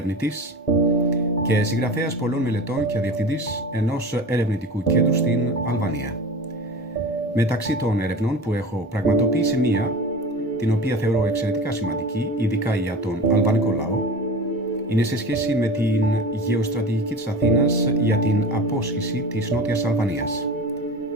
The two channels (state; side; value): normal; both; correlation 0.33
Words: και συγγραφέας πολλών μελετών και διευθυντής ενός ερευνητικού κέντρου στην Αλβανία. Μεταξύ των ερευνών που έχω πραγματοποιήσει μία, την οποία θεωρώ εξαιρετικά σημαντική, ειδικά για τον αλβανικό λαό, είναι σε σχέση με την γεωστρατηγική της Αθήνας για την απόσχηση της Νότιας Αλβανίας.